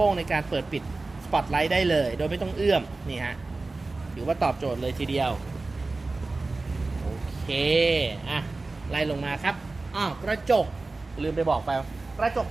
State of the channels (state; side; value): quieter; left; 3.4 dB